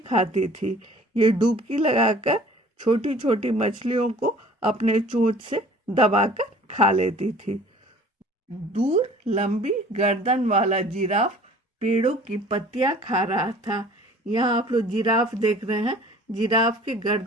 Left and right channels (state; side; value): normal; both; correlation 0.49